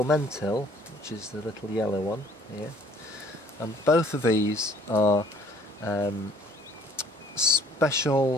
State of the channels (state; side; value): normal; both; correlation 0.57